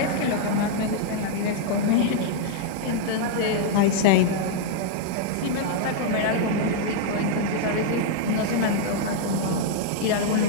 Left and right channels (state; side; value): different; both; correlation -0.01